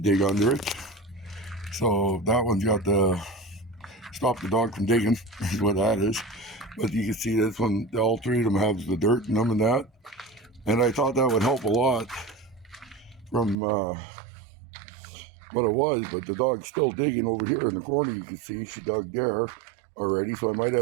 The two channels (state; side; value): drops out; left; at 13.6 s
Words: dig under it. So that one's got the stop the dog from digging, is what that is. But you can see this one, all three of them have the dirt in them and that. And I thought that would help a lot from what it was, but the dog's still digging over here in the corner. You can see she dug there already, so I might